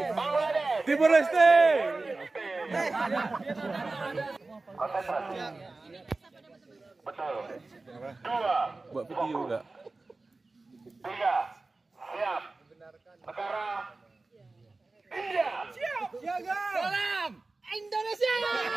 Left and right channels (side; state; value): left; quieter; 3.4 dB